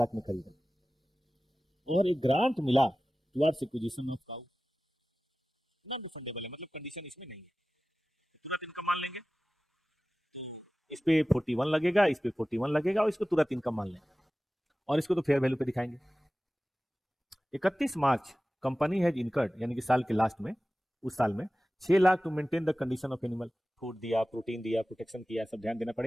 में खरीदा, और एक ग्रांट मिला towards acquisition of cow, non refundable है, मतलब कंडीशन इसमें नहीं है, तुरंत इनकम मान लेंगे, इस पे 41 लगेगा, इस पे 41 लगेगा, और इसको तुरंत इनकम मान लेंगे, और इसको तो फेयर वैल्यू पे दिखाएंगे। 31 मार्च कंपनी हैज इनकर्ड, यानी कि साल के लास्ट में, उस साल में 6 lakh to maintain the condition of animal, food दिया, प्रोटीन दिया, प्रोटेक्शन किया, सब ध्यान देना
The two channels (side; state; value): both; normal; correlation 0.96